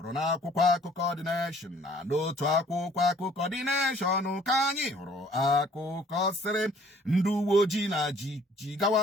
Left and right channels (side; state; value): both; normal; correlation 0.57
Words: n'akwụkwọ akụkọ The Nation na n'otu akwụkwọ akụkọ The Nation ka anyị hụrụ akụkọ sịrị ndị uwe ojii na